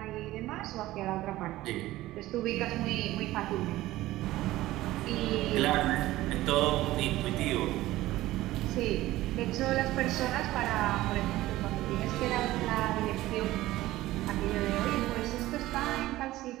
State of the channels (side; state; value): left; quieter; 16.5 dB